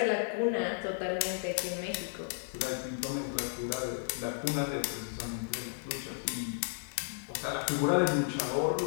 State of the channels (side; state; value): right; silent; digital silence